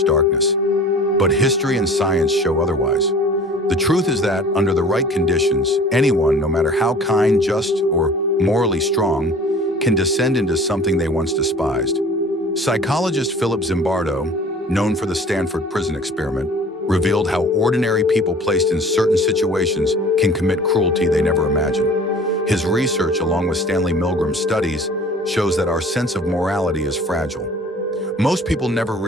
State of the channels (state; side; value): normal; both; correlation 0.45